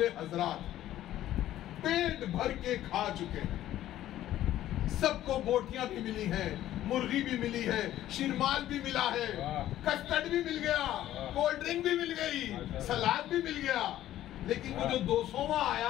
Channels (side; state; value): right; quieter; 13.2 dB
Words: حضرات پیٹ بھر کے کھا چکے ہیں، سب کو بوٹیاں بھی ملی ہیں، مرغی بھی ملی ہے، شیرمال بھی ملا ہے، کسٹرڈ بھی مل گیا، کولڈ ڈرنک بھی مل گئی، سلاد بھی مل گیا، لیکن وہ جو 200واں